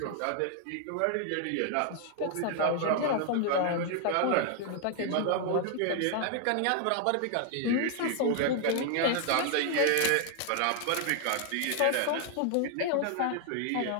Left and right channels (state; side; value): different; both; correlation 0.00